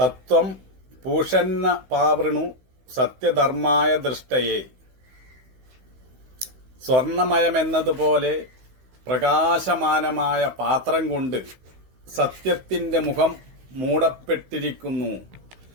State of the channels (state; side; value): late; left; 16 ms